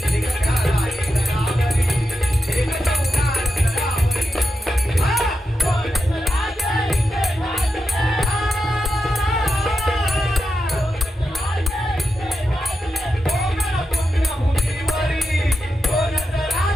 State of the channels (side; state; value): both; normal; correlation 0.88